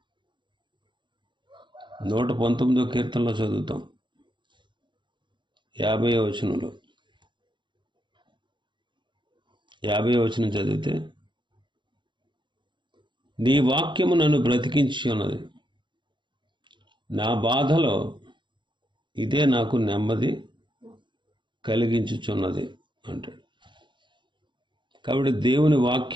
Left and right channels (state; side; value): late; left; 0.23 ms